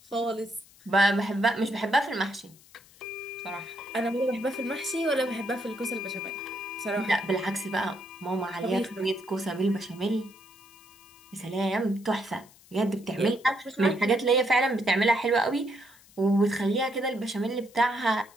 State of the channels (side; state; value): left; noise; hiss, 26 dB below the sound